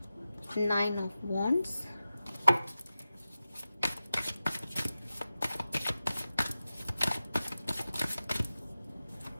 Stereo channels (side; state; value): both; inverted; correlation -0.94